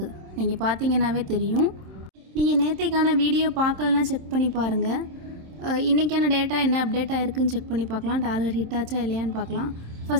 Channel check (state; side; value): late; left; 27 ms